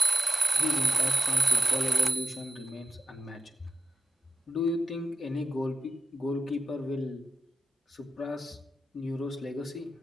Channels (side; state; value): both; normal; correlation 0.93